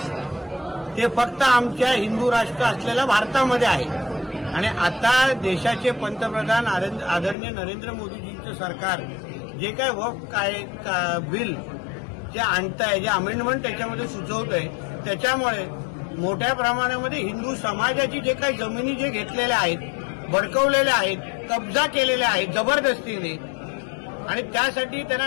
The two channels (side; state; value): right; drops out; at 7.4 s